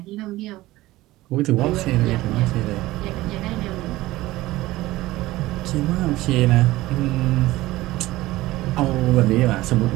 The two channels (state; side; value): quieter; left; 17.7 dB